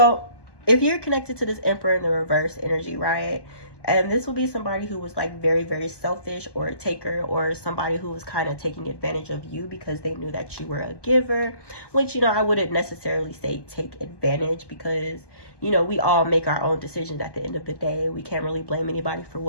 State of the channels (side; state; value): right; late; 1.2 ms